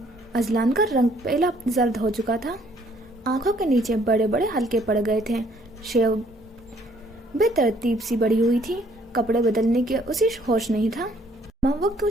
अजलान का रंग पहला जर्द हो चुका था, आंखों के नीचे बड़े बड़े हल्के पड़ गए थे, शेव बेतरतीब सी बड़ी हुई थी, कपड़े बदलने के उसे होश नहीं था। माँ वो क्यों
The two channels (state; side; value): normal; both; correlation 0.63